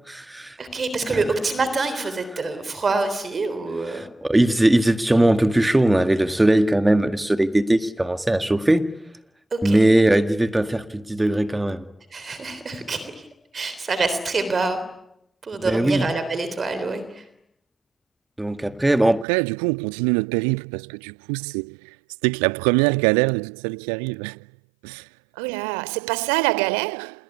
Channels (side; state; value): left; drops out; at 19.2 s